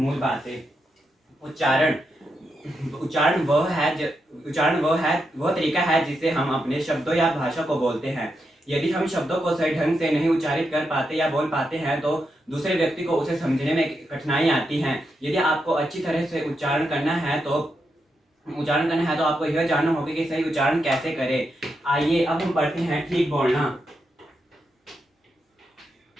बातें। उच्चारण उच्चारण वह तरीका है जिससे हम अपने शब्दों या भाषा को बोलते हैं। यदि हम शब्दों को सही ढंग से नहीं उच्चारित कर पाते या बोल पाते हैं तो दूसरे व्यक्ति को उसे समझने में कठिनाई आती है। यदि आपको अच्छी तरह से उच्चारण करना है तो आपको यह जानना होगा कि सही उच्चारण कैसे करें। आइए अब हम पढ़ते हैं ठीक बोलना।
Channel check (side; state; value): both; normal; correlation 0.84